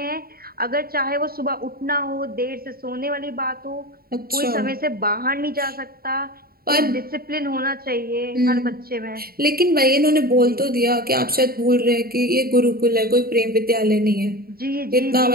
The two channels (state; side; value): late; left; 0.44 ms